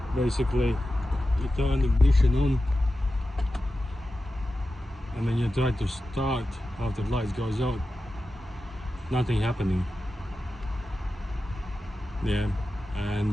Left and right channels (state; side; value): normal; both; correlation 0.92